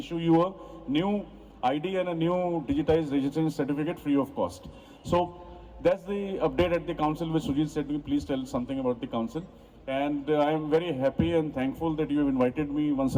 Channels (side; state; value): both; identical; correlation 1.00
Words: you a new ID and a new digitized registration certificate free of cost. So that's the update at the council which Sujit said. Please tell something about the council. And I am very happy and thankful that you have invited me once